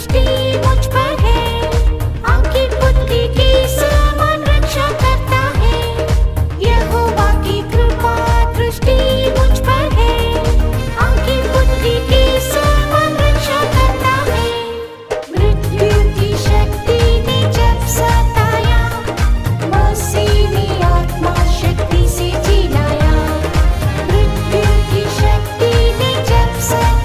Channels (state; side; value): identical; both; correlation 1.00